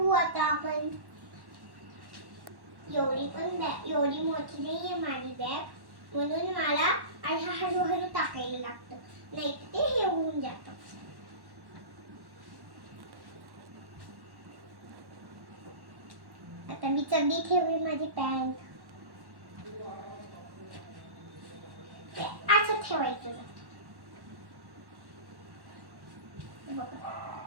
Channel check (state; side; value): late; left; 1.1 ms